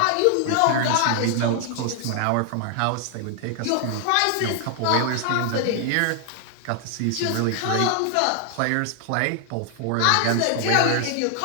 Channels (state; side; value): different; both; correlation 0.00